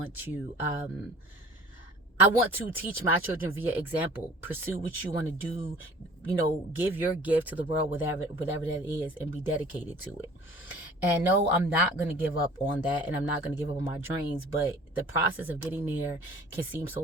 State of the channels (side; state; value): both; normal; correlation 0.47